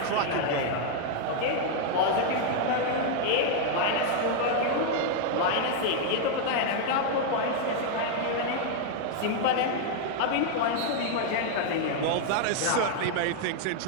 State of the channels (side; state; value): both; different; correlation 0.00